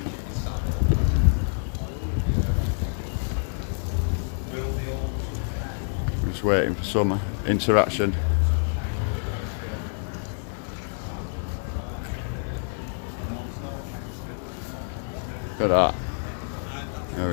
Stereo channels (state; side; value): silent; right; 60 dB below the other